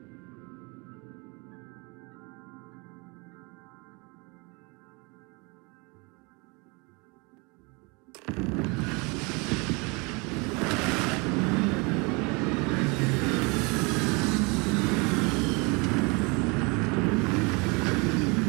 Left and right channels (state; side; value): quieter; left; 29.1 dB